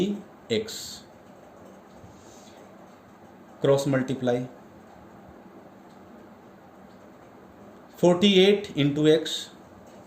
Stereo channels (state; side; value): identical; both; correlation 1.00